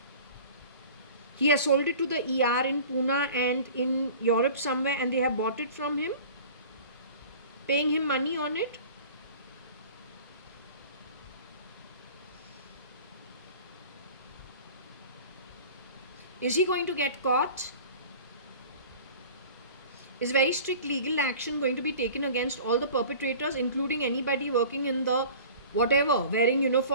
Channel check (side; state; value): both; inverted; correlation -0.42